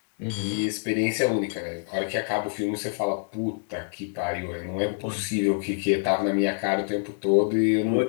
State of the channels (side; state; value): right; silent; digital silence